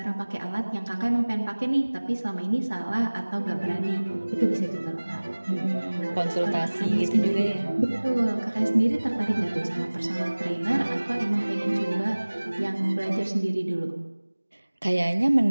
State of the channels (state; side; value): inverted; both; correlation -1.00